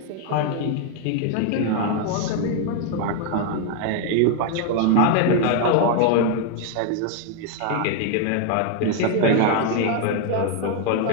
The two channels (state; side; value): different; both; correlation 0.01